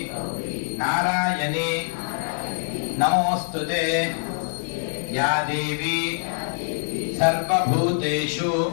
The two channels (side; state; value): right; silent; digital silence